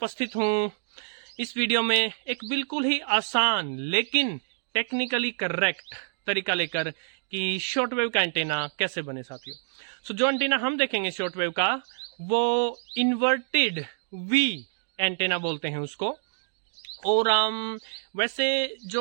हूँ इस वीडियो में एक बिल्कुल ही आसान लेकिन टेक्निकली करेक्ट तरीका लेकर कि शॉर्ट वेव का एंटीना कैसे बने। साथियों, जो एंटीना हम देखेंगे शॉर्ट वेव का, वो इन्वर्टेड वी एंटीना बोलते हैं उसको। और वैसे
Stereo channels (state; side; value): silent; left; digital silence